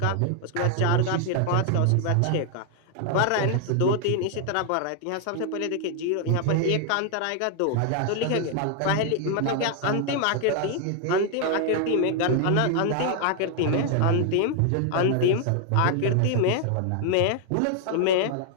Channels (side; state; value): both; different; correlation 0.00